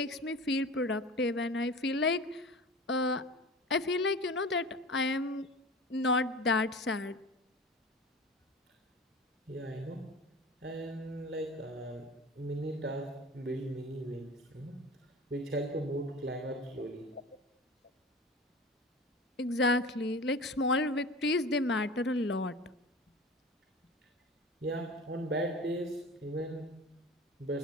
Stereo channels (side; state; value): both; normal; correlation 0.35